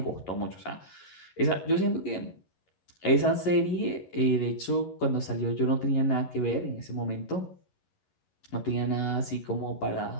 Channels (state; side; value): late; right; 11 ms